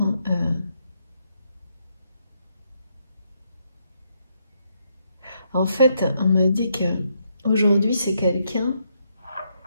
en fait, on me dit que aujourd'hui c'est quelqu'un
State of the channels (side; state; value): both; inverted; correlation -0.76